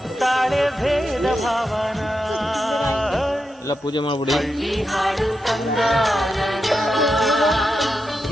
ಭೇದ ಭಾವನ. ಎಲ್ಲ ಪೂಜೆ ಮಾಡ್ಬಿಡಿ. ಹಳ್ಳಿ ಹಾಡು ತಂದ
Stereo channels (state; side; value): normal; both; correlation 0.87